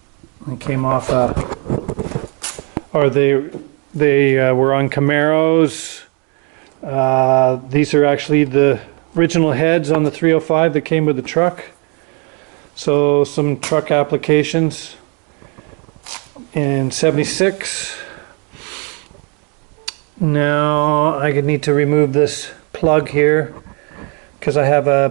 It came off or they were on Camaros. These are actually the original heads on the 305 that came with the truck. So some truck applications in 76. Now I need to remove this plug here because I have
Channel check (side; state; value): left; quieter; 35.4 dB